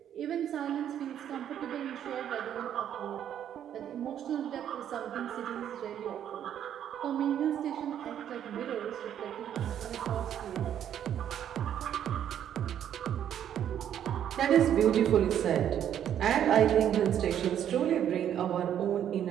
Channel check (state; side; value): quieter; left; 9.9 dB